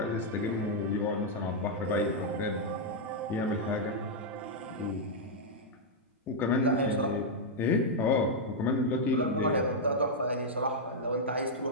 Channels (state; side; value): normal; both; correlation -0.05